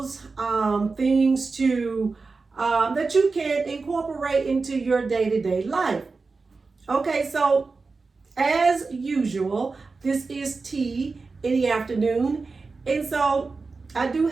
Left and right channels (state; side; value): quieter; left; 4.1 dB